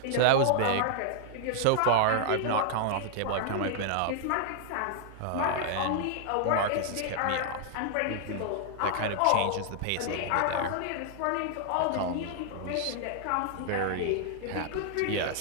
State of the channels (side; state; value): both; different; correlation -0.01